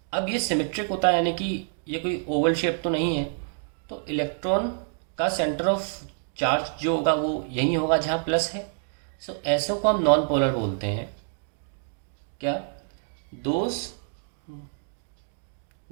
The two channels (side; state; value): left; silent; digital silence